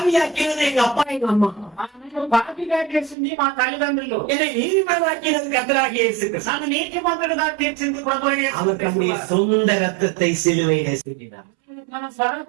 எங்க அப்பா எங்க அம்மா. నాకు పాపిగా చేసింది మా తల్లిదండ్రులు. என்னை நீதிமானாக்கினது கர்த்தராகிய இயேசு கிறிஸ்து. నన్ను నీతిమంతుడుగా తీర్చింది ప్రభువైన యేసు அவர் தம்முடைய క్రీస్తు. சொந்த ரத்தத்தை சிலுவையிலே சிந்தினார். మన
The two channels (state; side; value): drops out; left; at 3.2 s